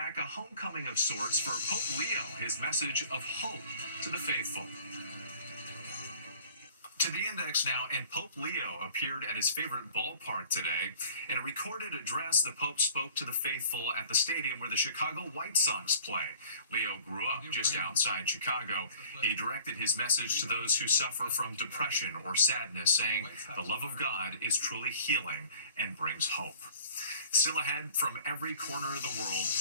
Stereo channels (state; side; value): inverted; both; correlation -0.50